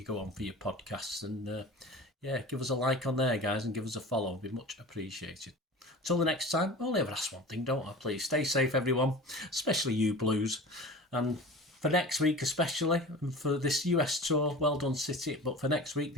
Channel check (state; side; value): normal; both; correlation 0.36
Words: go on for your podcasts, and yeah, give us a like on there, guys, and give us a follow. It'd be much appreciated. Until the next time, I only ever ask one thing, don't I? Please stay safe, everyone, especially you Blues. And for next week especially, and for this US tour, well done, City. But for next week,